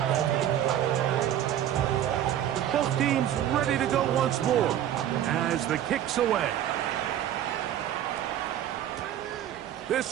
Both teams ready to go once more as the kick's away.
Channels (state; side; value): quieter; left; 11.2 dB